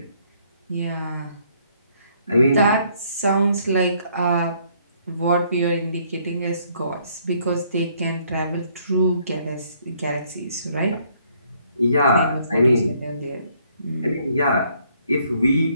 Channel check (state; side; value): inverted; both; correlation -0.66